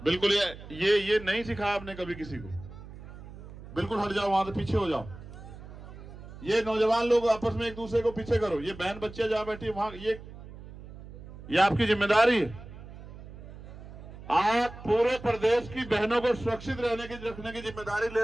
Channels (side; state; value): right; noise; hum, 15 dB below the sound